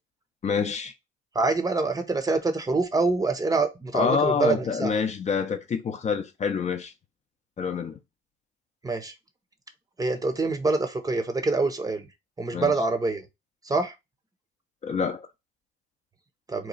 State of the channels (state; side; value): normal; both; correlation 0.59